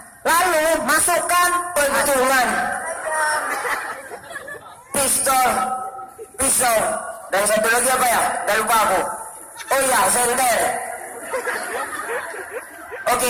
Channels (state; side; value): identical; both; correlation 1.00